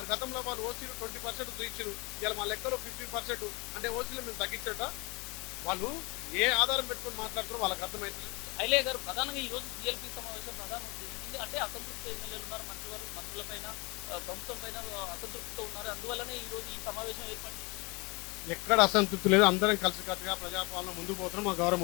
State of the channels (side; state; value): right; quieter; 27.6 dB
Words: గతంలో వాళ్ళు ఓసీలు 20% చూయించారు. ఇలా మా లెక్కలో 15% అంటే ఓసీలు మేము తగ్గించట. వాళ్ళు ఏ ఆధారం పెట్టుకొని మాట్లాడుతారో వాళ్ళకి అర్థమవుతుంది. ఐలయ్య గారు, ప్రధానంగా ఈ రోజు సీఎల్పీ సమావేశం ప్రధాన ఉద్దేశం ఏంటి అంటే అసంతృప్త ఎమ్మెల్యేలు ఉన్నారు, మంత్రులపైన ప్రభుత్వం పైన అసంతృప్తితో ఉన్నారు. అందువల్లనే ఈ రోజు ఈ సమావేశం ఏర్పాటు చేశారు. ఎక్కడ అసంతృప్తి లేదు. అందరం కలిసికట్టుగా ప్రజాపాలన ముందుకు పోతున్నాం. మా